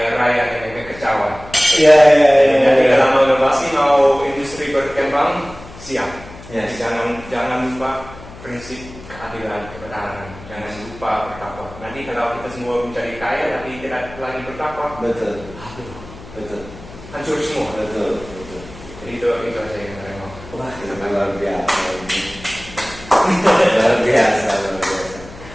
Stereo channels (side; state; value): left; noise; hum, 17 dB below the sound